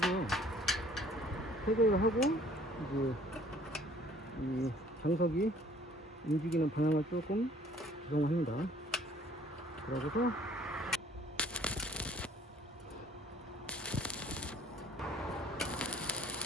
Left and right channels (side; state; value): both; normal; correlation 0.56